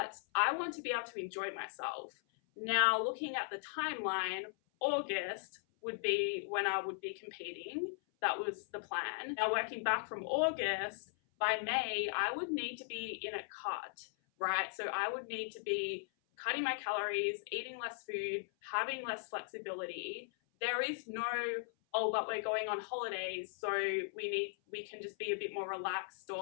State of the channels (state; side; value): silent; right; 52 dB below the other